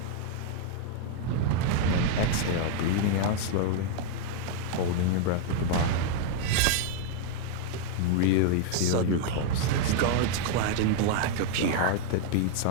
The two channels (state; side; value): different; both; correlation 0.00